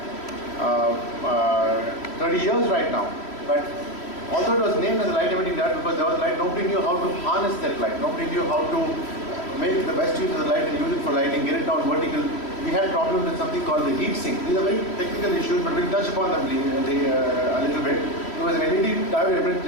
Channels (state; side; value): late; right; 3.1 ms